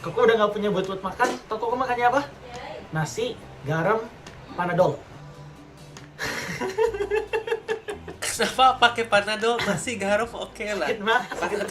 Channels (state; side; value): identical; both; correlation 1.00